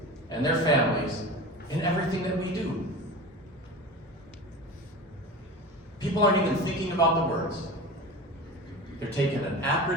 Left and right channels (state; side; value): normal; both; correlation 0.31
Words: and their families in everything that we do. People aren't even thinking about the words. They're taking an